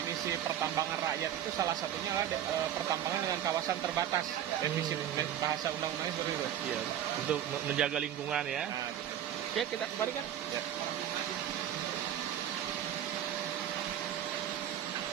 pertambangan rakyat itu salah satunya adalah pertambangan dengan kawasan terbatas. Definisi bahasa undang-undangnya seperti itu. Iya, untuk menjaga lingkungan ya. Nah, gitu. Ya, kita kembalikan. Ya.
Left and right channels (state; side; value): quieter; left; 10.5 dB